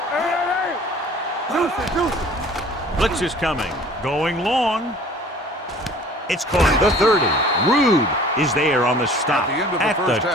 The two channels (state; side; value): normal; both; correlation 0.49